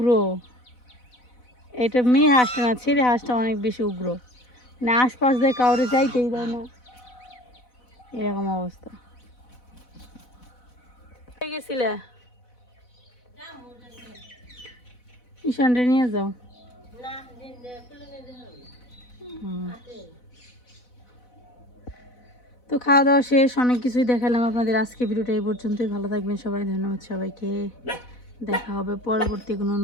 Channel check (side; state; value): right; late; 4.0 ms